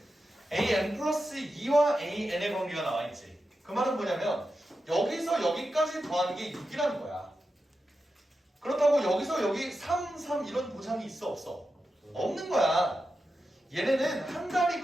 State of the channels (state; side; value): normal; both; correlation 0.90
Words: an 플러스 2와 an의 관계가 나와있지. 그 말은 뭐냐면 여기서 여기까지 더하는 게 6이라는 거야. 그렇다고 여기서 여기 3, 3 이런 보장이 있어 없어? 없는 거야. 얘네는 한 달이